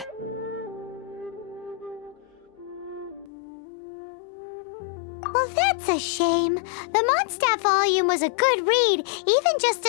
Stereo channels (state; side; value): drops out; right; at 3.3 s